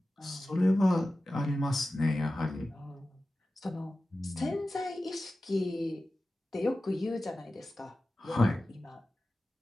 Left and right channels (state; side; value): normal; both; correlation 0.95